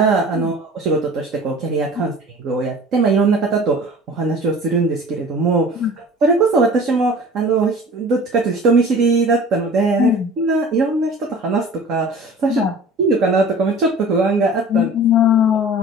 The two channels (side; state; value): both; normal; correlation 0.43